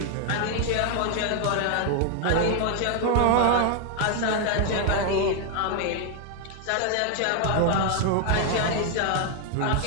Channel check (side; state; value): both; different; correlation 0.00